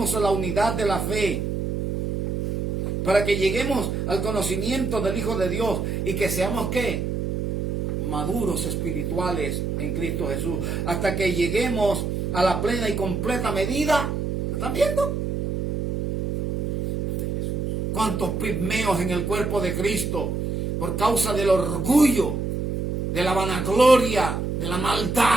a la unidad de la fe, para que lleguemos al conocimiento del Hijo de Dios y que seamos, ¿qué? Maduros espirituales en Cristo Jesús, hasta que lleguemos a la plena y completa medida. ¿Están viendo? De Jesús. ¿Cuántos pigmeos en el cuerpo de Cristo por causa del orgullo, de la vanagloria, de la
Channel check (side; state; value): right; noise; hum, 2 dB below the sound